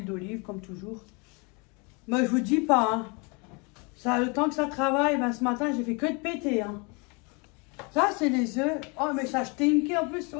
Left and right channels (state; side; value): quieter; right; 31.2 dB